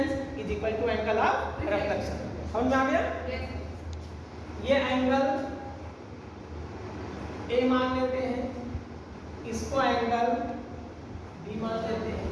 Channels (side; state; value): both; identical; correlation 1.00